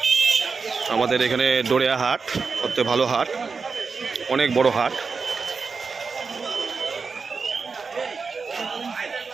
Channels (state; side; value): quieter; left; 4.9 dB